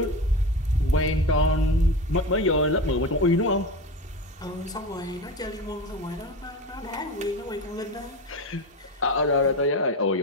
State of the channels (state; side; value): normal; both; correlation 0.26